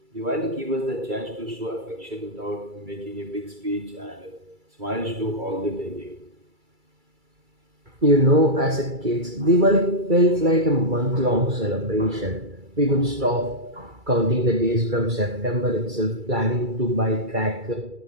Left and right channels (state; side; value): late; left; 2.3 ms